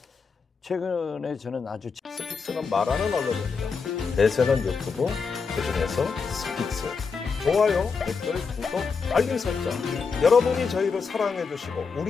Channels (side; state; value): right; quieter; 5.2 dB